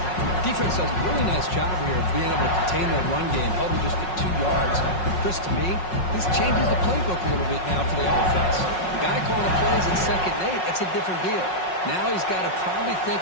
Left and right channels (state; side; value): late; right; 5.5 ms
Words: Defense does a really nice job here of being able to contain that run game, held him just at 2 yards. Chris, to me, this changes the playbook a little bit now for the offense. The guy calling the plays at 2nd and 8, that's a different deal. Now he's got to probably